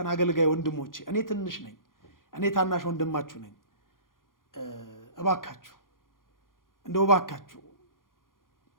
አገልጋይ ወንድሞቼ፣ እኔ ትንሽ ነኝ፣ እኔ ታናሽ ወንድማችሁ ነኝ። እባካችሁ እንደው እባካችሁ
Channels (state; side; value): late; right; 0.90 ms